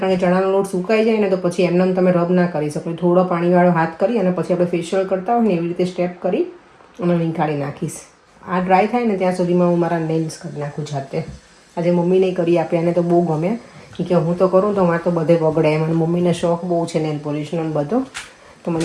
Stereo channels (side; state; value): both; identical; correlation 1.00